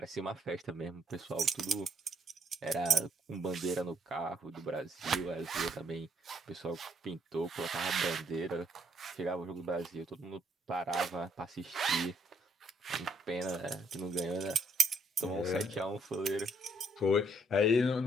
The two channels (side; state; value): both; normal; correlation 0.69